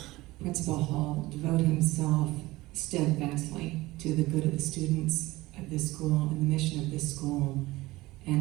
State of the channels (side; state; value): left; quieter; 19.4 dB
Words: Principal Hall devote himself steadfastly to the good of the students of this school and the mission of this school.